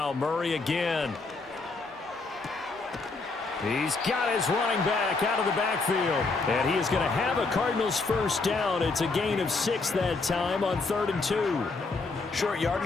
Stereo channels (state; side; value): quieter; right; 3.8 dB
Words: Murray again. He's got his running back out of the backfield. And he is going to have a Cardinals first down. It's a gain of 6 that time on 3rd and 2. Short